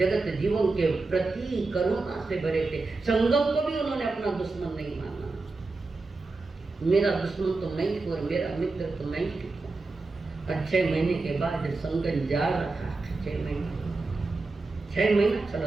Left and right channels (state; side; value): quieter; left; 3.6 dB